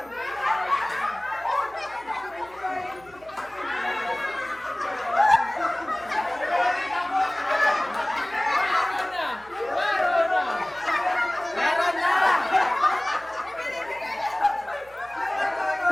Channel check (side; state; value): right; noise; hum, 25 dB below the sound